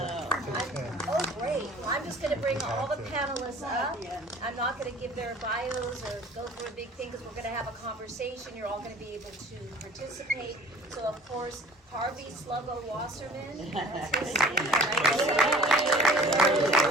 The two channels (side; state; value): both; normal; correlation 0.48